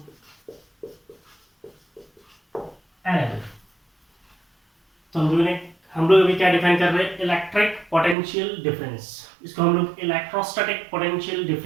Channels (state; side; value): drops out; left; at 8.2 s